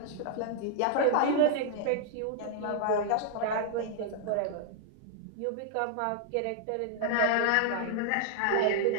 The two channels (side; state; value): both; different; correlation -0.01